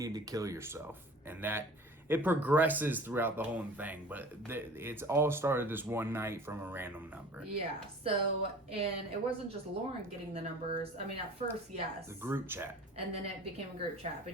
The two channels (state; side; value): normal; both; correlation 0.43